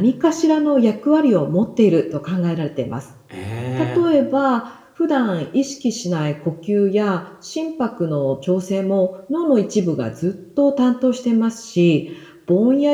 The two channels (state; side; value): identical; both; correlation 1.00